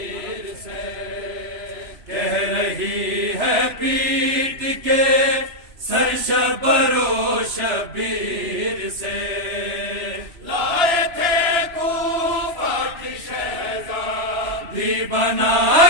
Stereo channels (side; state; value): left; late; 3.0 ms